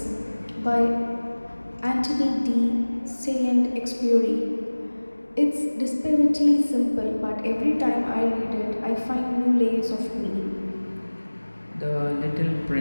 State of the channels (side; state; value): both; inverted; correlation -1.00